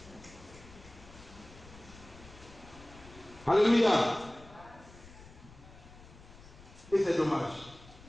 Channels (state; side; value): noise; left; rumble, 20 dB below the sound